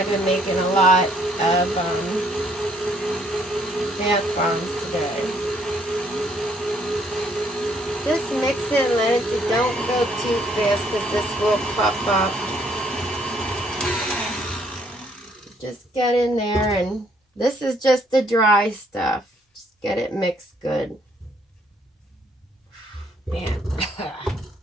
been making a lot of bath bombs today. Just mix it and let it, don't go too fast because this will puff up. Just get in there, and this is just the dry stuff. Just get it mixed good. Man.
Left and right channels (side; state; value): both; normal; correlation 0.67